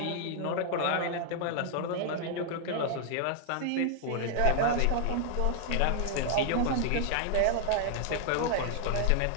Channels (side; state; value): both; different; correlation 0.00